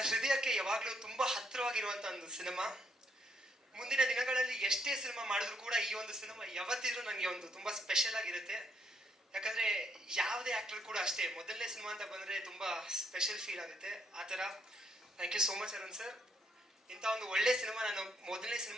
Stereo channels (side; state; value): both; normal; correlation 0.72